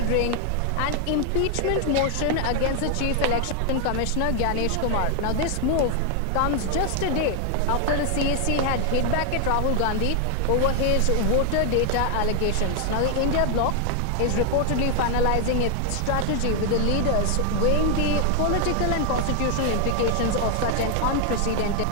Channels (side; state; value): both; different; correlation 0.00